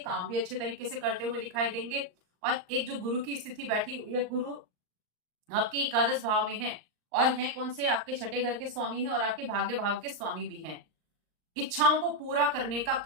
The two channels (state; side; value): late; left; 39 ms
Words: भी अच्छे तरीके से करते हुए दिखाई देंगे। और एक जो गुरु की स्थिति बैठी हुई है, गुरु आपके एकादश भाव में है, और है कौन से, आपके छठे घर के स्वामी है और आपके भाग्य भाव के स्वामी भी हैं। इच्छाओं को पूरा करने का